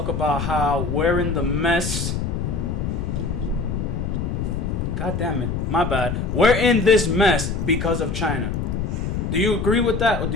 about how we're in the mess. God damn it. My bad. We're in this mess because of China. Do you agree with that, or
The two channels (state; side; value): noise; left; rumble, 2 dB below the sound